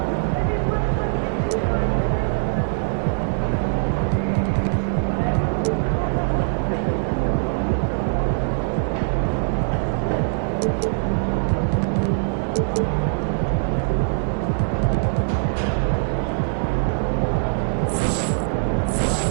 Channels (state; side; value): silent; left; digital silence